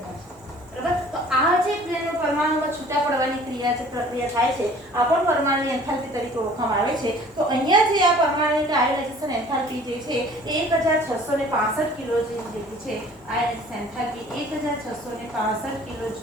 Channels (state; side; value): normal; both; correlation 0.50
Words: બરાબર, તો આ જે પરમાણુમાં છૂટા પડવાની ક્રિયા છે પ્રક્રિયા થાય છે આ પણ પરમાણુની એન્થાલ્પી તરીકે ઓળખવામાં આવે છે. તો અહીંયા જે આ પરમાણુની આયોનાઇઝેશન એન્થાલ્પી જે છે 1665 કિલો જેટલી છે. આયોનાઇઝેશન એન્થાલ્પી 1665 કિલો